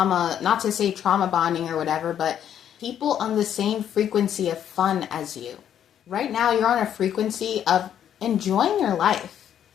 not to say trauma bonding or whatever, but people on the same frequency of fun as you. Right now, you're on a frequency of enjoying your life,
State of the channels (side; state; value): right; quieter; 9.8 dB